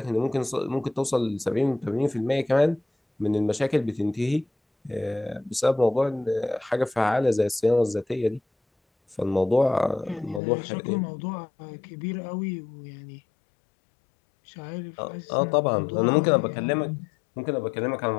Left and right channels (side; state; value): right; drops out; at 10.4 s